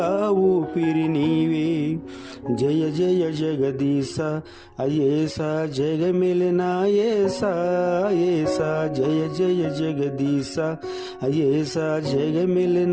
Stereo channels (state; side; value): identical; both; correlation 1.00